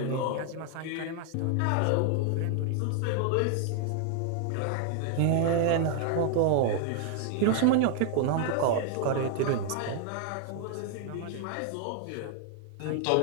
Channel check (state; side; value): different; both; correlation 0.00